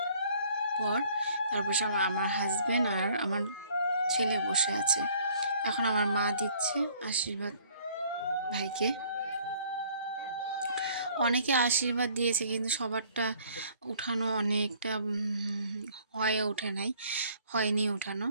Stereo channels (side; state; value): both; inverted; correlation -0.58